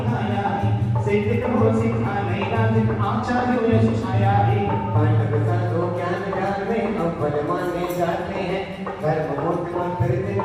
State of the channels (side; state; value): both; identical; correlation 1.00